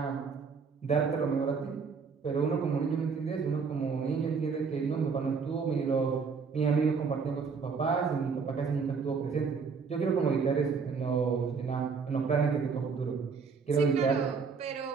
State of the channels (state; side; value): quieter; left; 5.4 dB